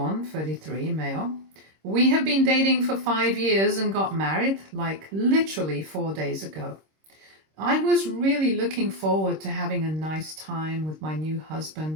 33 male. We have been dating for 5 years and got married like literally 4 days ago. I was really looking forward to having a nice time with my new husband,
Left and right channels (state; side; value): late; left; 26 ms